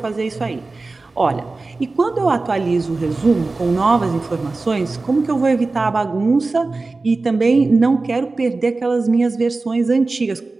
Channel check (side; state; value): left; quieter; 3.5 dB